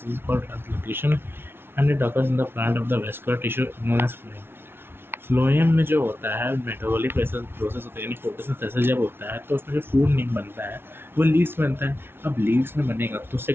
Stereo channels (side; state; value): left; late; 0.11 ms